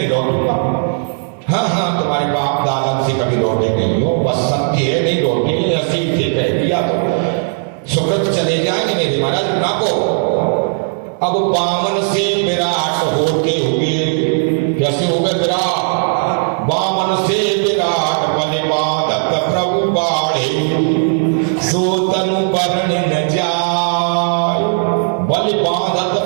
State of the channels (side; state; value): left; silent; 65 dB below the other